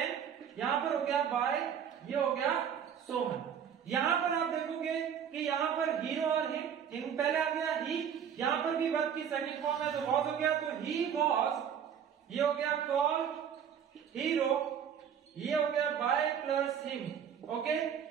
यहाँ पर हो गया बाय, ये हो गया सोहन। यहाँ पर आप देखोगे कि यहाँ पर हीरो और हिम पहले आ गया ही, यहाँ पर भी वर्ब की सेकंड फॉर्म है तो वॉज हो गया, तो ही वॉज, ये हो गया कॉल हीरो, ये हो गया बाय प्लस हिम। ओके,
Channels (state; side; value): quieter; left; 8.3 dB